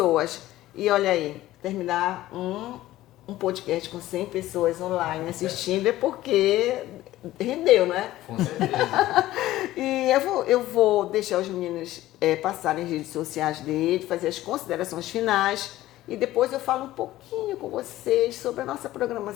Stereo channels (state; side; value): quieter; right; 15.4 dB